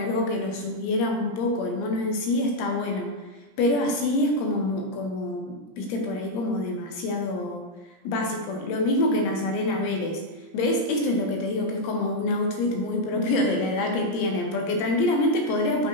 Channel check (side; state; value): right; late; 17 ms